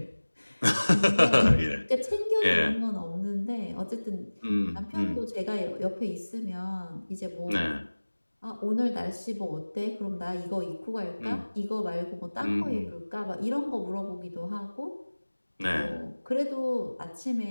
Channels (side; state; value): both; inverted; correlation -1.00